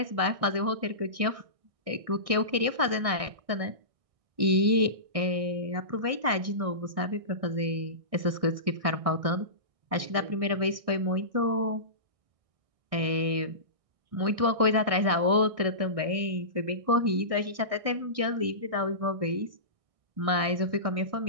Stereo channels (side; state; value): left; late; 1.6 ms